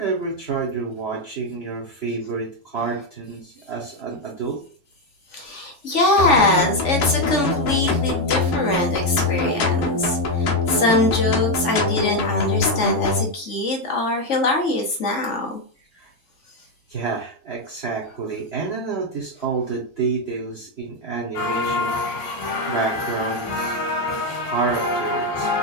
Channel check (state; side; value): late; right; 3.5 ms